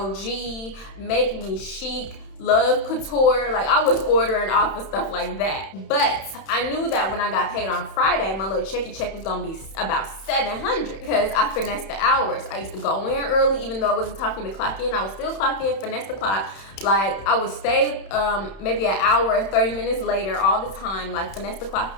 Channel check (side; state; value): right; late; 31 ms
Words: Make Me Chic, Love Couture. Like, I was ordering off of stuff like that. But I knew that when I got paid on Friday, my little check was gonna be about $700 because I finessed the hours. I used to go in early, even though it wasn't time for me to clock in. I would still clock in, finesse the clock. Like, I would stay maybe an hour, 30 minutes later all the time, like finesse the clock